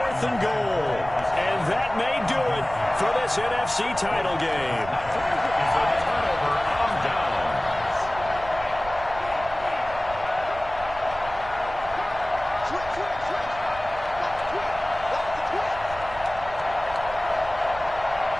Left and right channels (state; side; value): noise; right; rumble, 15 dB below the sound